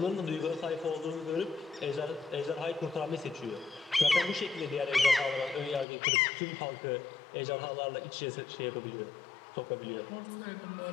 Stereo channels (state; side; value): drops out; right; at 5.9 s